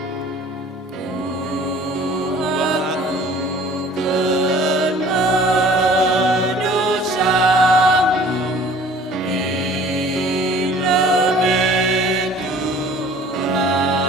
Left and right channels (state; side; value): normal; both; correlation 0.50